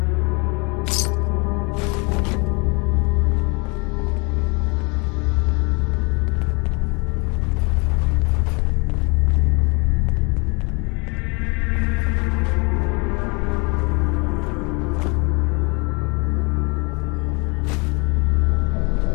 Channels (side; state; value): right; quieter; 30.6 dB